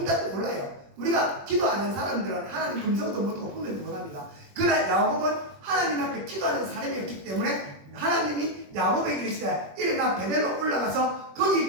몰라요. 우리가 기도하는 사람들은 하나님 음성도 못하고 분별도 못합니다. 그러나 야곱은 하나님 앞에 기도하는 사람이었기 때문에 하나님이 야곱에게 이르시되 일어나 베델로 올라가서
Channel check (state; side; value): late; left; 21 ms